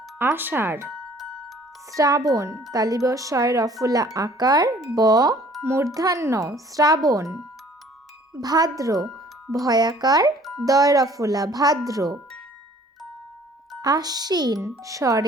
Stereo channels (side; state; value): both; normal; correlation 0.55